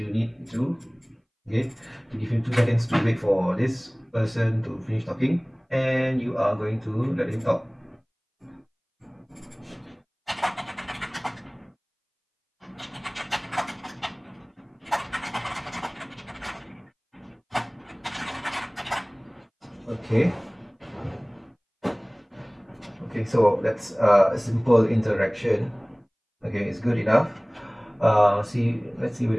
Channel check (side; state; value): both; identical; correlation 1.00